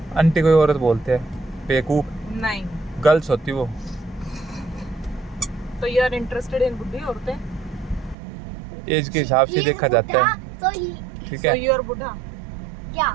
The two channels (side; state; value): left; drops out; at 8.2 s